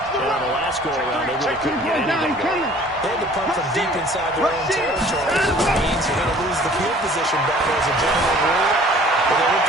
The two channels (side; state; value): both; normal; correlation 0.51